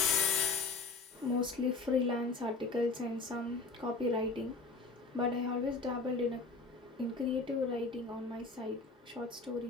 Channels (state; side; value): quieter; right; 3.9 dB